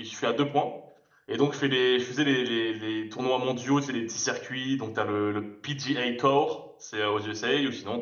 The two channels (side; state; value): both; identical; correlation 1.00